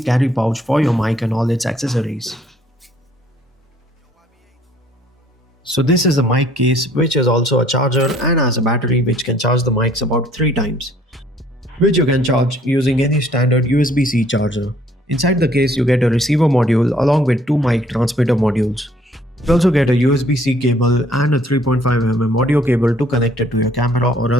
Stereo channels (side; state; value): both; normal; correlation 0.61